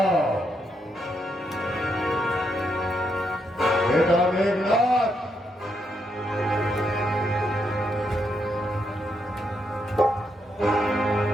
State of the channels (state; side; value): normal; both; correlation 0.79